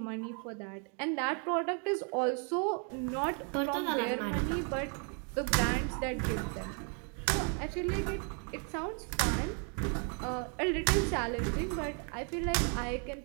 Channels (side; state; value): left; quieter; 39.6 dB